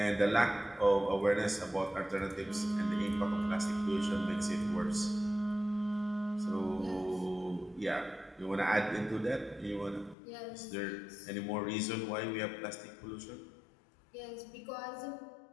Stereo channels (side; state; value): right; drops out; at 10.2 s